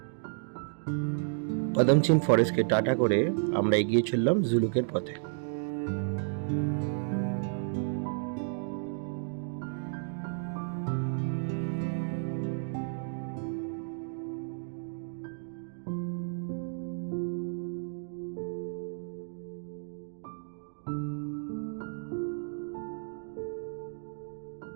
পদমচিন ফরেস্টকে টাটা করে আমরা এগিয়ে চললাম জুলুকের পথে।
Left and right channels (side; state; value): left; silent; digital silence